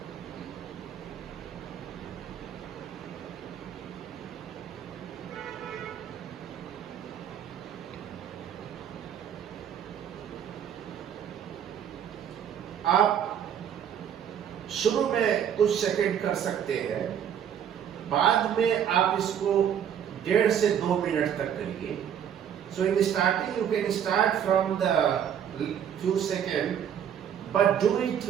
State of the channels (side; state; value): left; quieter; 9.0 dB